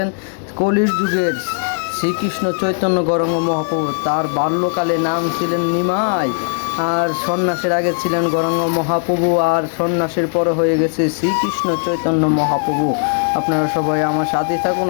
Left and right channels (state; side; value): silent; right; digital silence